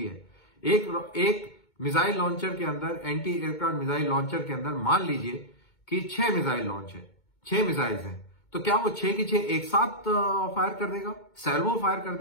है। एक मिसाइल लॉन्चर के अंदर, एंटी एयरक्राफ्ट मिसाइल लॉन्चर के अंदर मान लीजिए कि 6 मिसाइल लॉन्च है, 6 मिसाइल्स हैं, तो क्या वो 6 की 6 एक साथ फायर कर देगा, सैल्वो फायर कर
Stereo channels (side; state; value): right; late; 2.2 ms